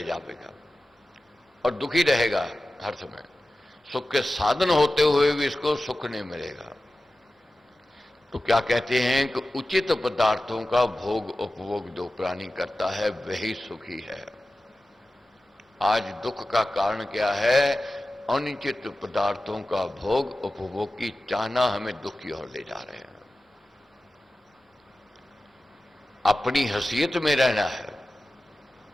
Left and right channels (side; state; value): both; normal; correlation 0.95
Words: जावेगा और दुखी रहेगा हर समय। सुख के साधन होते हुए भी इसको सुख नहीं मिलेगा। तो क्या कहते हैं कि उचित पदार्थों का भोग उपभोग जो प्राणी करता है वही सुखी है। आज दुख का कारण क्या है? अनुचित पदार्थों का भोग उपभोग की चाहना हमें दुख की ओर ले जा रहे हैं। अपनी हैसियत में रहना है।